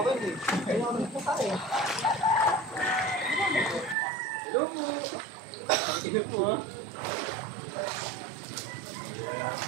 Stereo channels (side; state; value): left; drops out; at 4.0 s